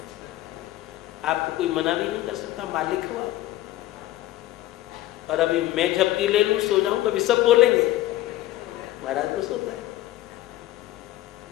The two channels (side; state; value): right; quieter; 15.3 dB